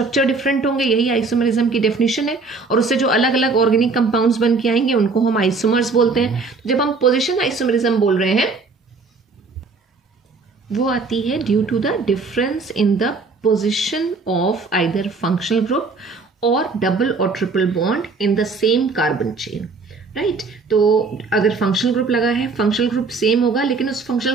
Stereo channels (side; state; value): left; quieter; 4.2 dB